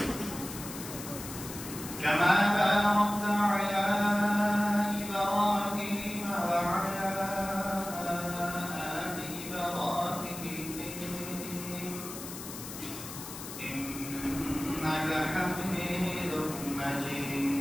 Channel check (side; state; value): left; noise; hiss, 10 dB below the sound